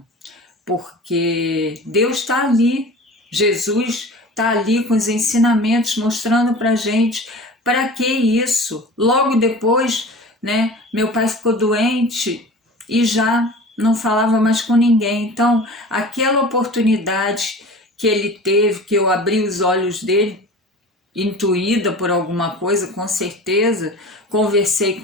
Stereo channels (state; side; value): normal; both; correlation 0.38